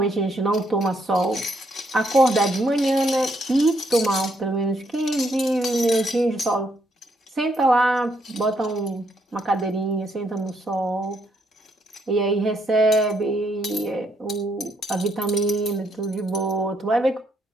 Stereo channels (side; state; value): both; normal; correlation 0.74